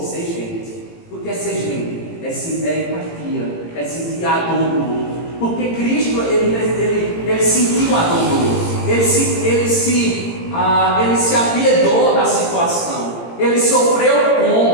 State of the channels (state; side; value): late; right; 18 ms